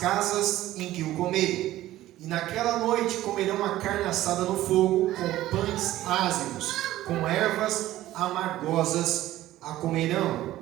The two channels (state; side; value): quieter; left; 14.9 dB